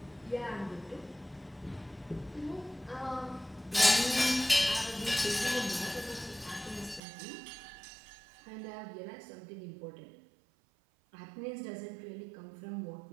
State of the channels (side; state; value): left; drops out; at 7.0 s